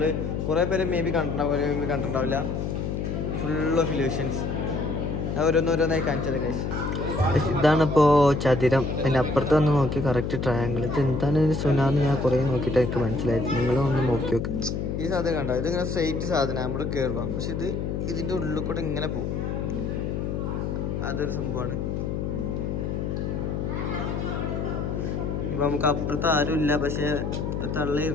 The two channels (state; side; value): noise; left; hum, 2 dB below the sound